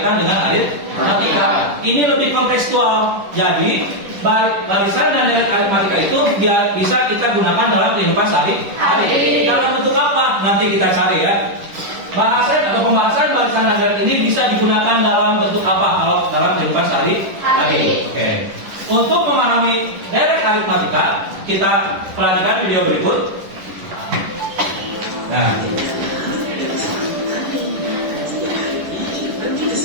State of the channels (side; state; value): left; late; 10 ms